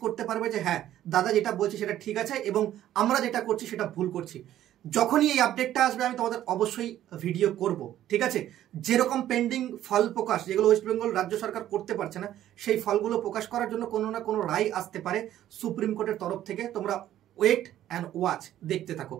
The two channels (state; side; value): quieter; left; 12.4 dB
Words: করতে পারবে যে হ্যাঁ দাদা যেটা বলছে সেটা ঠিক আছে এবং আমরা যেটা করছি সেটা ভুল করছি। যখনই এই আপডেটটা আসবে আমি তোমাদের অবশ্যই ভিডিও করব। ঠিক আছে, যেরকম পেন্ডিং ফল প্রকাশ যেগুলো ওয়েস্ট বেঙ্গল রাজ্য সরকার করতে পারছে না, সেই ফলগুলো প্রকাশ করার জন্য কোনো না কোনো রায় আসতে পারে সুপ্রিম কোর্টের তরফ থেকে। তোমরা ওয়েট অ্যান্ড ওয়াচ দেখতে থাকো।